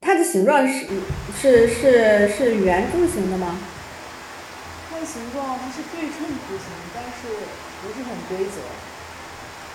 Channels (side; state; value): both; identical; correlation 1.00